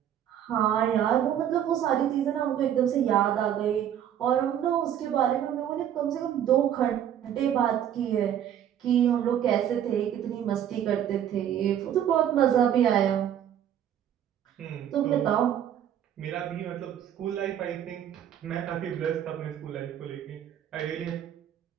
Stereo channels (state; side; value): quieter; left; 10.1 dB